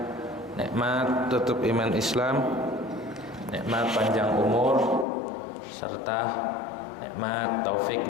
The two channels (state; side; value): drops out; right; at 5.1 s